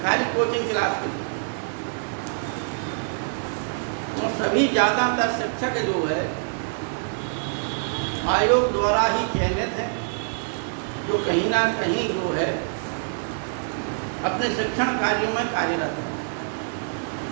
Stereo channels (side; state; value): left; silent; digital silence